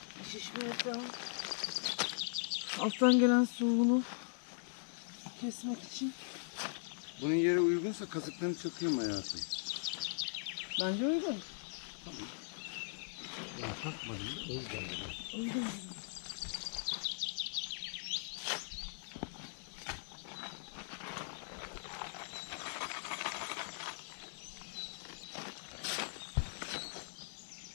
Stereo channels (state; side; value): silent; right; digital silence